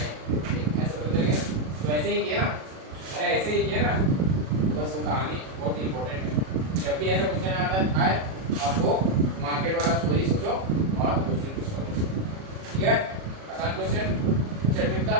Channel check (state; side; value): late; left; 37 ms